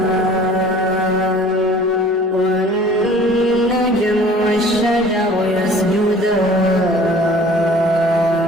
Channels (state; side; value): normal; both; correlation 0.49